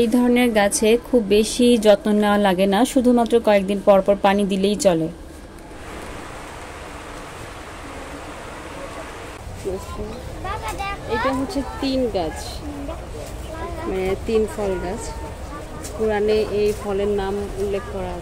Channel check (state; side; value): identical; both; correlation 1.00